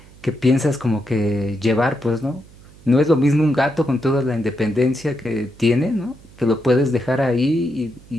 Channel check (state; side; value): noise; right; hum, 23 dB below the sound